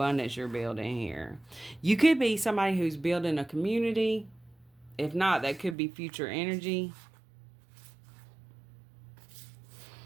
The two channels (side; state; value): left; drops out; at 5.8 s